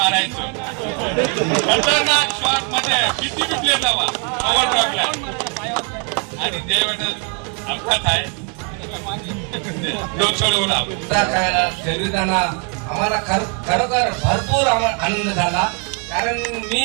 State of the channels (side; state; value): left; quieter; 38.0 dB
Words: खतरनाक शॉट मध्ये किती बी प्लेयर लावा ओव्हर ड्रॉपला. आणि जयवेताल अपघात आहे 2 सोडवून खेळायला खेळताना आम्हाला खरोखर भरपूर आनंद झाला. कारण मी